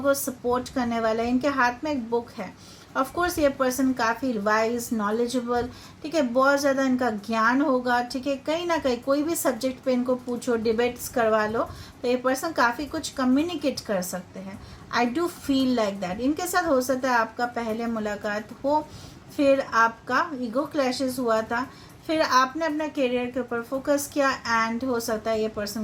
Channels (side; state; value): both; identical; correlation 1.00